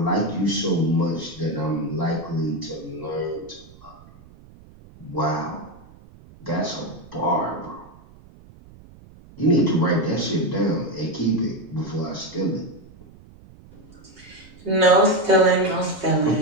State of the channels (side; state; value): right; noise; rumble, 23 dB below the sound